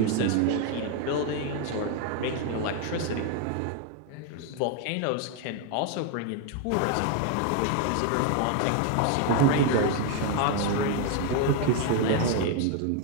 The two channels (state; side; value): different; both; correlation 0.01